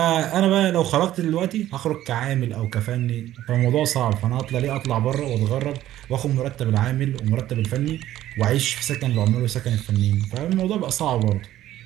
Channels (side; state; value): left; quieter; 13.4 dB